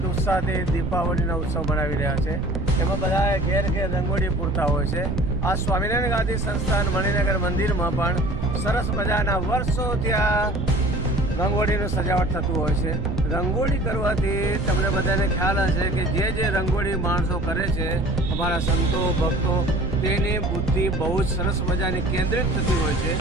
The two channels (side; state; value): right; noise; rumble, 5 dB below the sound